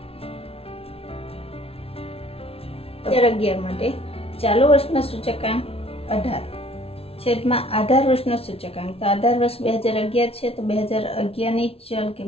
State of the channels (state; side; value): late; right; 0.28 ms